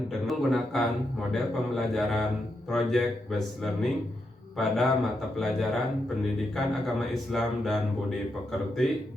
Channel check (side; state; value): both; normal; correlation 0.83